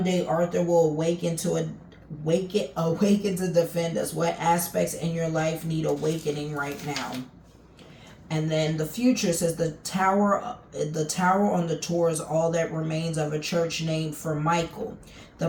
day, Arthur will awaken to defend us. What aspects in your life need awakening right now? And then the future says the tower on the tour is all that remains of a church named for Michael, the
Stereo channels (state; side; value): identical; both; correlation 1.00